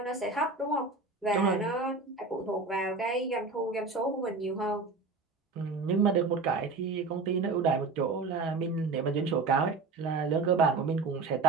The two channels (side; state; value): left; quieter; 4.0 dB